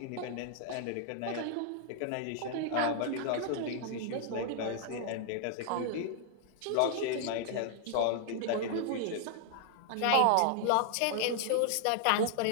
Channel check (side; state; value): both; different; correlation -0.01